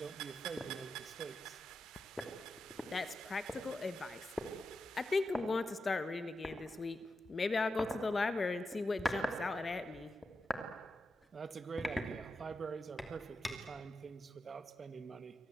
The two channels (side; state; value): both; normal; correlation 0.89